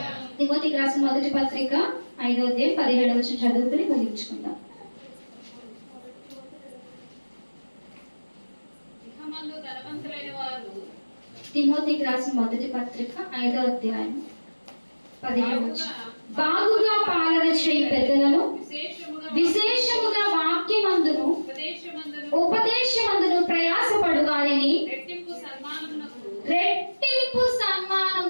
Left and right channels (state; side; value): inverted; both; correlation -1.00